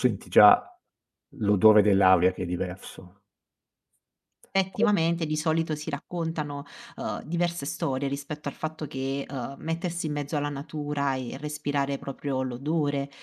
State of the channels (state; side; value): identical; both; correlation 1.00